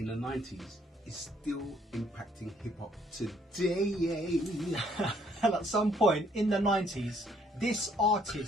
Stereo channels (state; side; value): normal; both; correlation 0.65